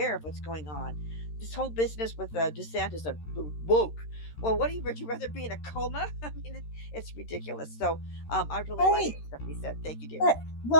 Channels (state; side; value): late; right; 13 ms